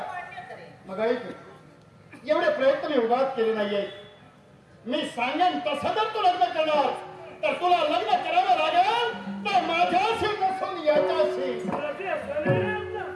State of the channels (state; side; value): identical; both; correlation 1.00